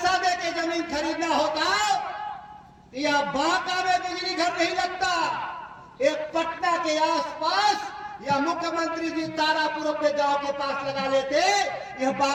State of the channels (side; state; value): both; identical; correlation 1.00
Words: देके जमीन खरीदना होता तो यह बांका में बिजली घर नहीं लगता। एक पटना के आसपास या मुख्यमंत्री जी तारापुर अपने गांव के पास लगा लेते, यह